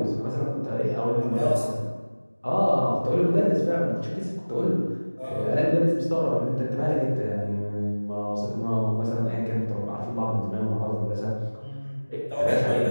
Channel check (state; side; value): inverted; both; correlation -1.00